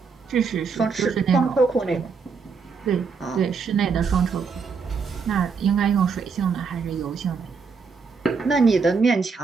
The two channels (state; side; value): quieter; left; 5.3 dB